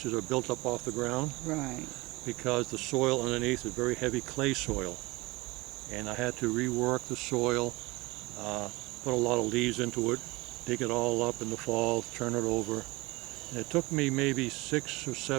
are built up off the ground. Right. Because the soil underneath is very heavy clay soil. And I had to rework the soil, put a lot of leaves into it, dig it all up in the fall, turn it over, And it took me maybe 6 or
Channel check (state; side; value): quieter; left; 22.4 dB